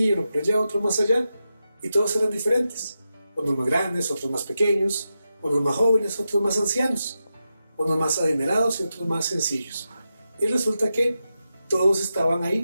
uno por allá, otro más allá, y todos eran diferentes. Unos más grandes, otros más pequeños, unos más jóvenes, otros más ancianos, unos más adinerados y otros más sencillos. Y resulta que todos estaban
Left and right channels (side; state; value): both; inverted; correlation -0.89